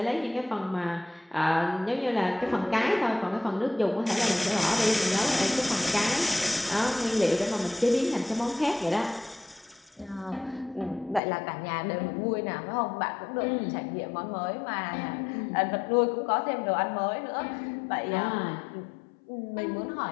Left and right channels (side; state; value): right; drops out; at 11.2 s